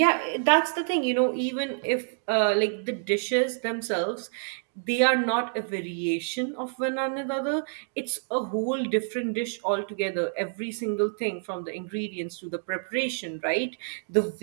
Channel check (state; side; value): silent; left; digital silence